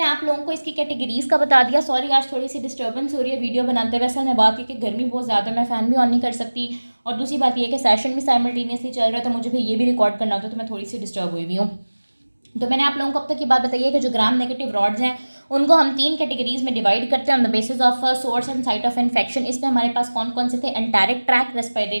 आप लोगों को इसकी कैटेगरीज़ का बता दिया। सॉरी आज थोड़ी सी डिस्टर्बेंस हो रही है वीडियो बनाते हुए। असल में बात ये कि गर्मी बहुत ज़्यादा, मैं फ़ैन भी ऑन नहीं कर सकती, और दूसरी बात ये कि सेशन भी साइमल्टेनियसली चल रहा है, तो मुझे भी ये भी रिकॉर्ड करना होता है, तो मैं थोड़ी सी डिस्टर्ब हुई हुई हूँ। तो मैंने आप लोगों को अब तक ये बात बताई है कि जो ग्राम नेगेटिव रॉड्स हैं उनको हम 3 कैटेगरीज में डिवाइड करते हैं on the basis of source and site of infection. इसमें हमारे पास कौन कौन से थे? एंटेरिक ट्रैक,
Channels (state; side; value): inverted; both; correlation -1.00